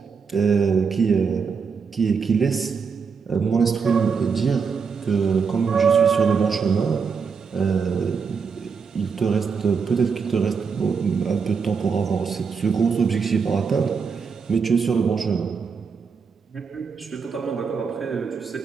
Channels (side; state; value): left; quieter; 5.7 dB